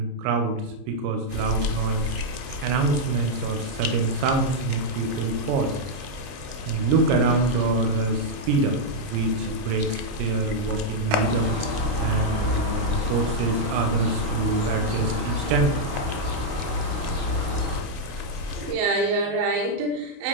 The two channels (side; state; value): left; late; 30 ms